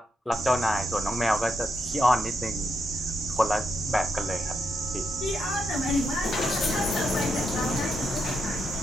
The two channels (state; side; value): normal; both; correlation 0.82